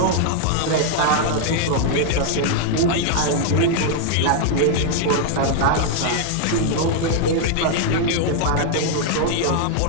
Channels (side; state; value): both; different; correlation 0.00